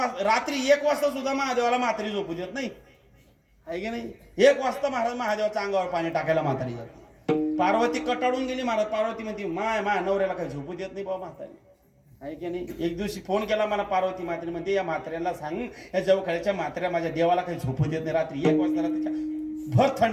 1 वाजता सुद्धा महादेवाला म्हातारी झोपू देत नाही, आहे की नाही? 1 वाजता महाराज महादेवाच्या अंगावर पाणी टाकायला म्हातारी जाते. पार्वती कटाळून गेली महाराज. पार्वती म्हणते माय नवऱ्याला काही झोपू देत नाही बाबा म्हातारी, आहे की नाही? एक दिवशी फोन केला मला पार्वती म्हातारी, म्हणते या म्हाताऱ्याला सांग, या जवळच्या म्हाताऱ्या माझ्या देवाला काही झोपू देत नाही, रात्री 1 वाजता त्याच्या भर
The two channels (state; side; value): identical; both; correlation 1.00